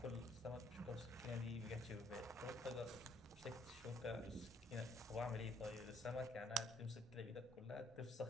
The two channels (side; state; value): both; normal; correlation 0.65